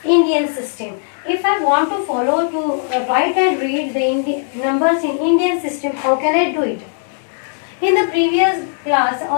Indian system. If I want to follow to write and read the numbers in Indian system, how can I do it? In the previous class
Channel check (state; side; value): silent; right; digital silence